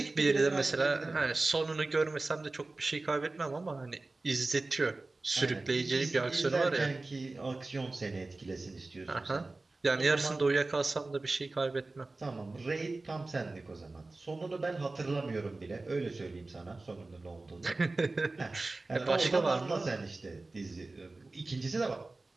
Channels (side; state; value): left; quieter; 3.3 dB